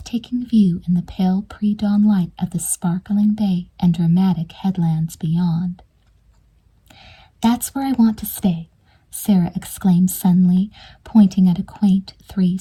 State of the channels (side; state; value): both; identical; correlation 1.00